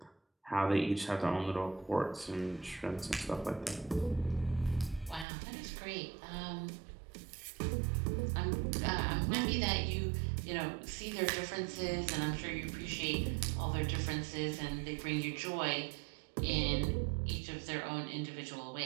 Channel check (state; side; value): drops out; left; at 5.2 s